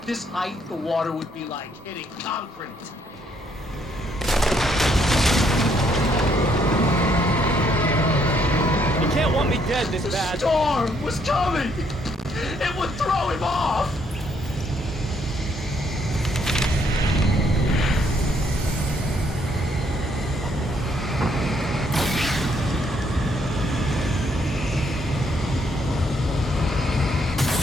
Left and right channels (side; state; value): both; normal; correlation 0.70